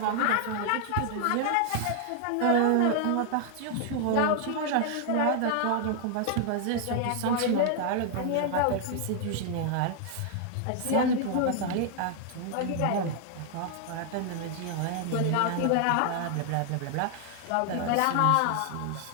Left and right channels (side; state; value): both; different; correlation 0.00